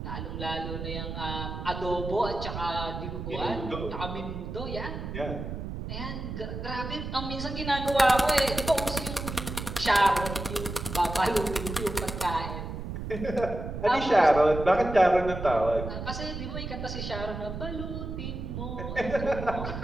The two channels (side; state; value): right; noise; rumble, 6 dB below the sound